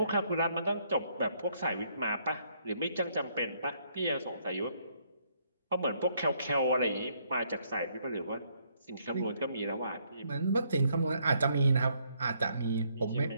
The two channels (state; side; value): inverted; both; correlation -0.70